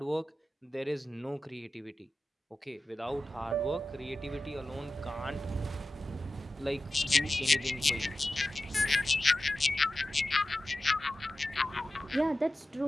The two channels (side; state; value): both; normal; correlation 0.94